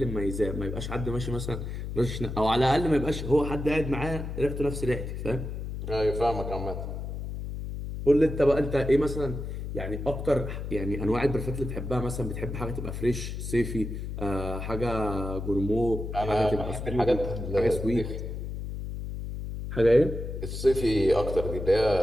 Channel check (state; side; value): noise; left; hum, 6 dB below the sound